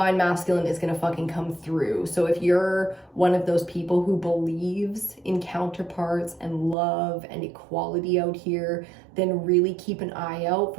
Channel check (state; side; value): drops out; left; at 6.8 s